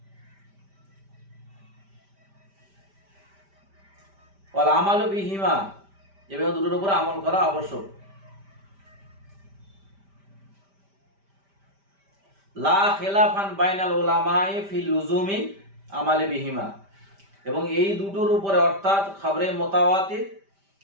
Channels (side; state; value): left; late; 5.1 ms